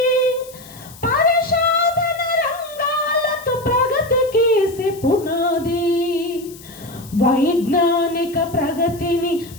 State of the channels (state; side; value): noise; left; hiss, 20 dB below the sound